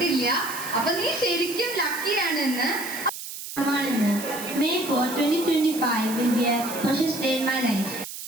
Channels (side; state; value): right; noise; hiss, 10 dB below the sound